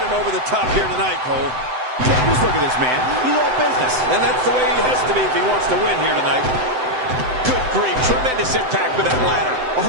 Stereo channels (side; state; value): left; late; 7.9 ms